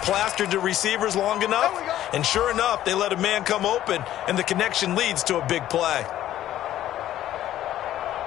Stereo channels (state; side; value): quieter; right; 12.8 dB